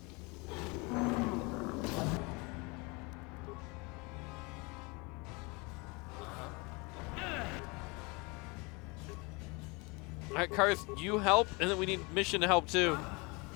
Alright, Carth, you help, and then we need Mission to help too.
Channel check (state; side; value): quieter; right; 27.8 dB